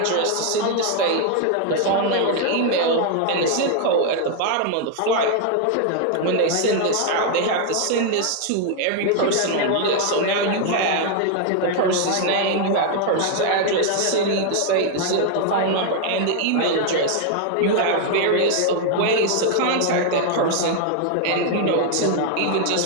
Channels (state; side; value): different; both; correlation 0.00